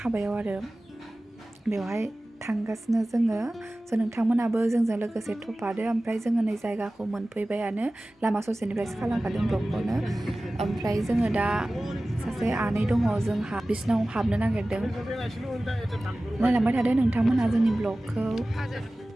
आरो बेवहाय थांगासिनो जोङो नोंथांमोनाबो जोंजों लोगोसे थफादो ओमफ्राय जोङो नै जायगाखौ मोनफैबायानो लामा ससेनिफ्रायसो खालामखादों ब्लगखौनो ओमफ्राय जोङो दा सासे आनै दङ जोंहा बिसिनाव हाबनो नागिरदों नायलांबाय थादो नोंथांमोना जोंनि ब्लगखौ।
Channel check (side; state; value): both; normal; correlation 0.97